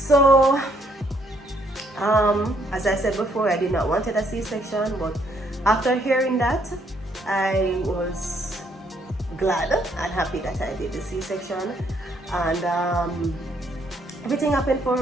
as I said before, I did not want a C-section, but after hearing that, I was glad and happy that I did the C-section, and everything happened for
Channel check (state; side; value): normal; both; correlation 0.69